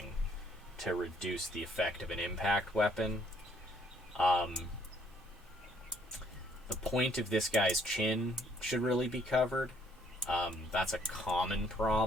to reduce the effect of an impact weapon. The point of this guy's chin should really be covered. That's a common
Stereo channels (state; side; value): normal; both; correlation 0.65